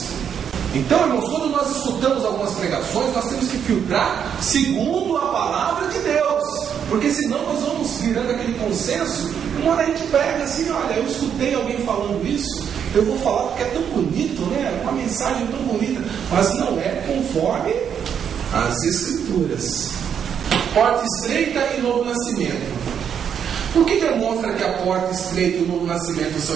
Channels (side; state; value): left; quieter; 8.1 dB